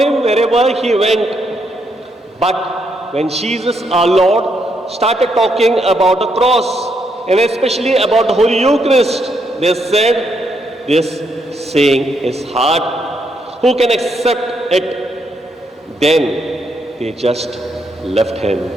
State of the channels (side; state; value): both; normal; correlation 0.77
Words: wherever he went. But when Jesus, our Lord, started talking about the cross and especially about the Holy Eucharist, they said, "This saying is hard. Who can accept it?" Then they just left him.